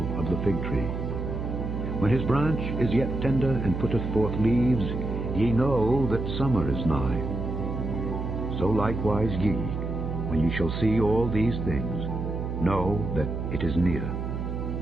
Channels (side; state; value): right; noise; hum, 4 dB below the sound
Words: of the fig tree. When his branch is yet tender and putteth forth leaves, ye know that summer is nigh. So likewise ye, when ye shall see all these things, know that it is near,